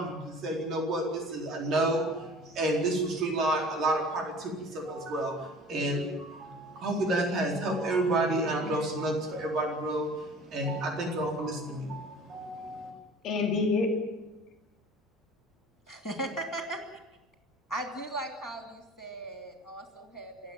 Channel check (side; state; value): both; normal; correlation 0.45